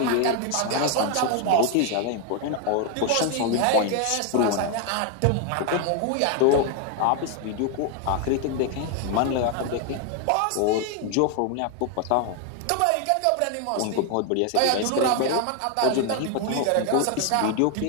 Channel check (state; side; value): different; both; correlation 0.01